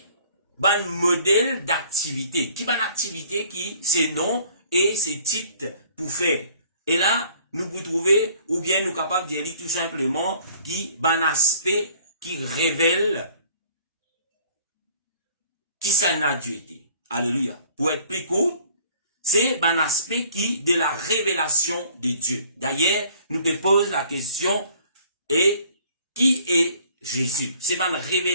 ban modèle d'activité. Qui ban activité qui, ces noms et ces titres pour faire. Et là, nous vous trouvez, ou bien nous capables de dire tout simplement, qui ban aspect qui révèle qui ça n'a Dieu été. Alléluia. Pour être plus court, c'est un aspect qui de la révélation de Dieu. D'ailleurs, nous te posons la question, et qui est Jésus? C'est une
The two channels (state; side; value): inverted; both; correlation -0.55